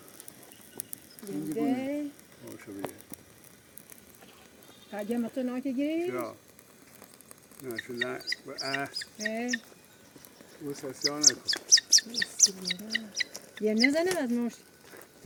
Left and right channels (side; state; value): both; identical; correlation 1.00